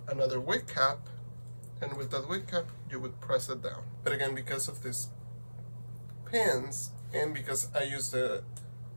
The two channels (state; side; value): inverted; both; correlation -1.00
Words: another wig cap, and with that wig cap, you would press it down. But again, because of these pins, and because I use the